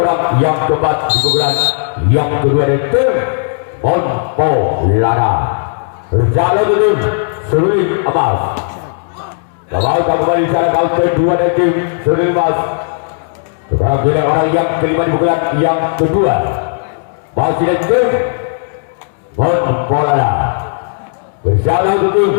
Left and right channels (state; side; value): silent; right; digital silence